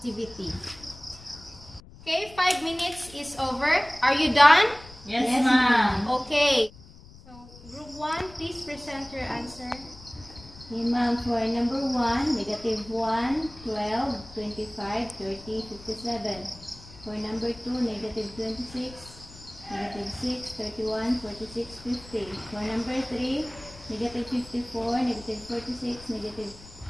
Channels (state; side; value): noise; left; rumble, 20 dB below the sound